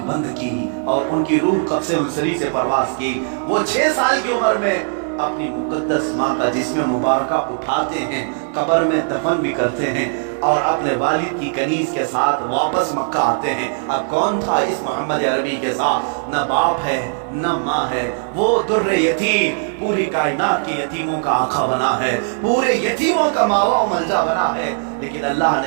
بند کی اور ان کی روح قبض انصری سے پرواز کی۔ وہ 6 سال کی عمر میں اپنی مقدس ماں کا جسم مبارکہ اٹھاتے ہیں، قبر میں دفن بھی کرتے ہیں، اور اپنے والد کی کنیز کے ساتھ واپس مکہ آتے ہیں۔ اب کون تھا اس محمد عربی کے ساتھ؟ نہ باپ ہے نہ ماں ہے، وہ در یتیم، پوری کائنات کے یتیموں کا آقا بنا ہے، پورے یتیموں کا ماوا و ملجا بنا ہے، لیکن اللہ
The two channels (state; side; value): silent; left; 64 dB below the other